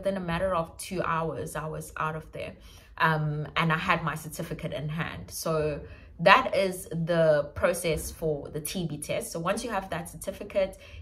a matter of 2 hours, I was out of there. And I had my certificate in hand. So that is the process for the TB test. So once you have that certificate,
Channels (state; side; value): identical; both; correlation 1.00